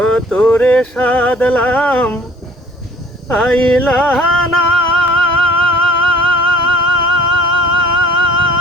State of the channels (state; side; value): normal; both; correlation 0.54